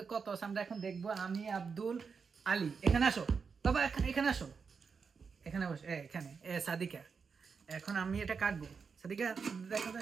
কত আছে আমরা এখন দেখবো। আমি আব্দুল আলী, এখানে আসো বাবা, এখানে আসো, এখানে বসো, এখানে সাদিকা। এখন আমি এটা কাটবো। সাদিকা, দেখো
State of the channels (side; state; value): left; quieter; 5.6 dB